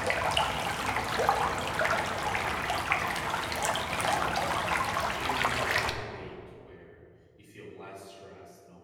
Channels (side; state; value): both; identical; correlation 1.00